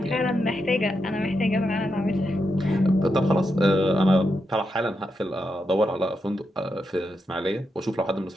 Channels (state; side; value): normal; both; correlation 0.85